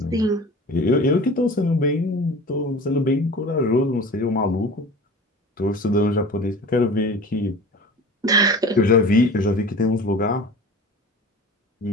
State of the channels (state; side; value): normal; both; correlation 0.38